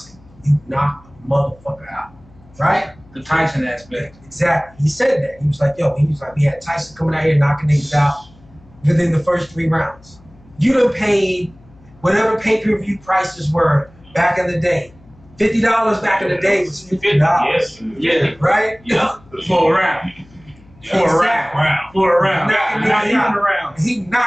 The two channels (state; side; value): noise; left; hum, 27 dB below the sound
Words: you knock a motherfucker out, right? The Tyson aspect. Exactly. He said that. He was like, we had Tyson coming out here knocking niggas out within the first 3 rounds. You done paid whatever pay-per-view prices were back in the day. $50 back in the day was $50. Yeah. Right? Yeah. For a round. For a round. Not even a round. He